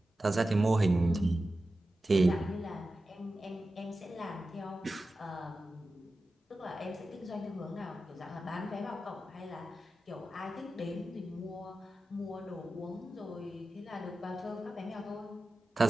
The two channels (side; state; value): both; normal; correlation 0.93